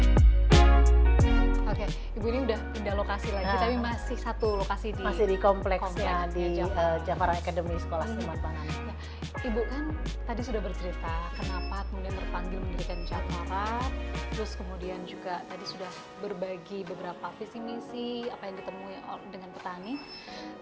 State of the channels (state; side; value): identical; both; correlation 1.00